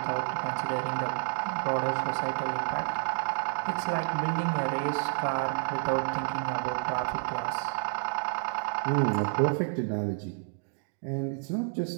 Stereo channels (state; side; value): silent; left; 58 dB below the other